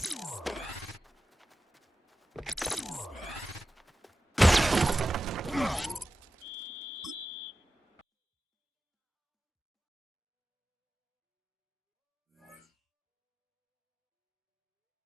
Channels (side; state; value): both; normal; correlation 0.94